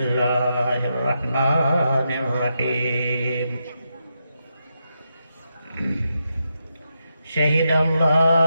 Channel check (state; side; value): inverted; both; correlation -0.84